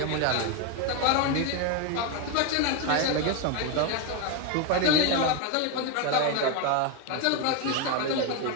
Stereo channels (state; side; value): different; both; correlation 0.02